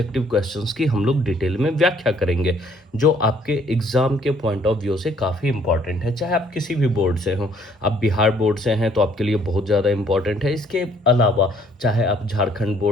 क्वेश्चंस की हम लोग डिटेल में व्याख्या करेंगे, जो आपके एग्ज़ाम के पॉइंट ऑफ व्यू से काफ़ी इंपॉर्टेंट है। चाहे आप किसी भी बोर्ड से हों, आप बिहार बोर्ड से हैं तो आपके लिए बहुत ज़्यादा इंपॉर्टेंट है। इसके अलावा चाहे आप झारखंड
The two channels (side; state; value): both; normal; correlation 0.63